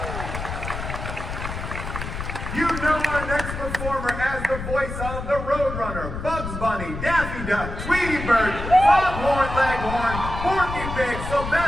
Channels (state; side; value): noise; left; rumble, 6 dB below the sound